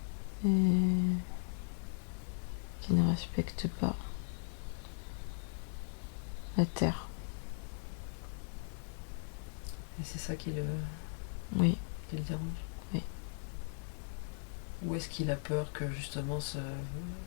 et qui ne respectent pas la terre. Et c'est ça Oui, qui le dérange. oui. Ou est-ce qu'il a peur que justement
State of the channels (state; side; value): silent; right; digital silence